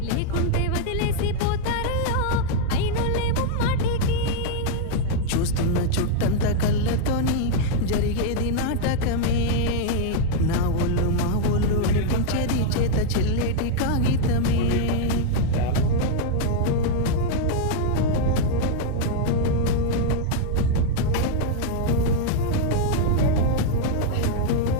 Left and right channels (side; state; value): both; different; correlation 0.00